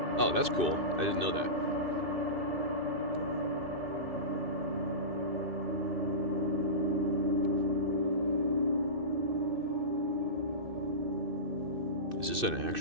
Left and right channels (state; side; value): late; left; 2.6 ms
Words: Oh, that's cool. I didn't know that. Is this an